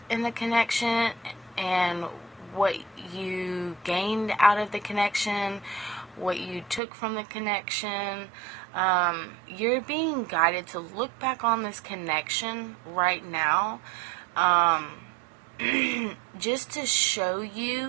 in the connection and what you gained out of the connection, what you took from the connection. You're being guided to look back on this connection right now, just to show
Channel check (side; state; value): left; drops out; at 6.8 s